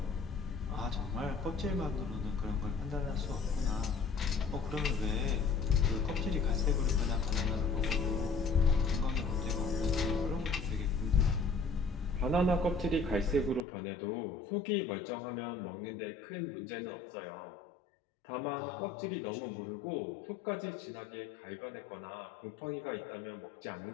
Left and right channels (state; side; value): drops out; right; at 13.7 s